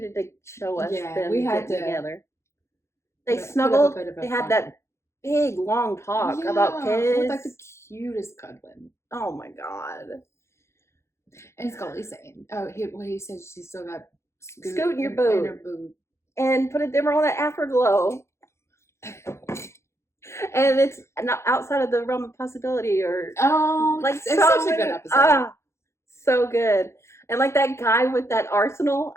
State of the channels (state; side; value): late; right; 0.13 ms